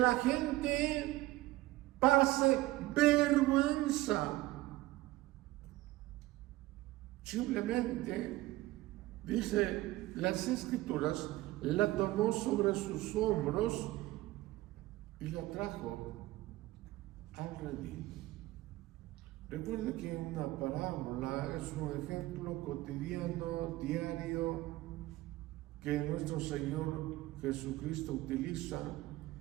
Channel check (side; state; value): left; quieter; 17.8 dB